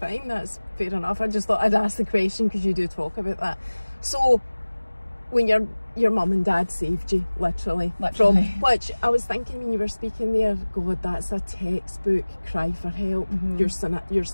fine, that's fair enough. I just thought I'd ask the question because you do talk about that. So when your mum and dad saved you, literally. From which I was thinking when you were speaking there, God, that's a textbook cry for help. Your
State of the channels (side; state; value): both; inverted; correlation -1.00